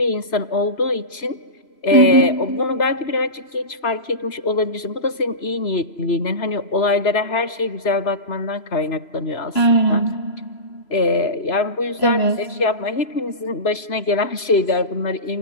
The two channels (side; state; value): right; late; 3.0 ms